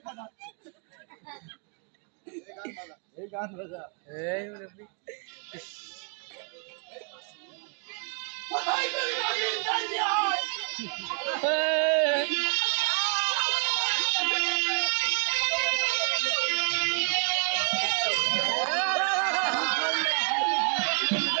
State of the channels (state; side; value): quieter; left; 38.9 dB